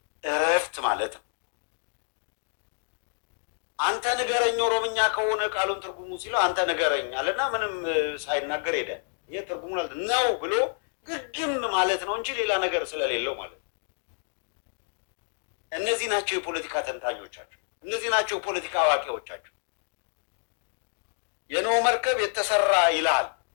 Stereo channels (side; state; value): right; silent; digital silence